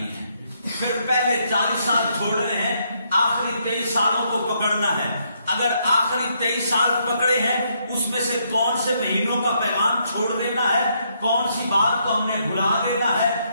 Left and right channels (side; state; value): both; inverted; correlation -0.74